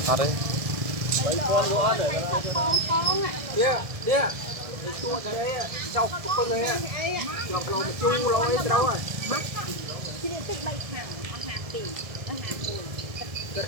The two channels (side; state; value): left; late; 1.7 ms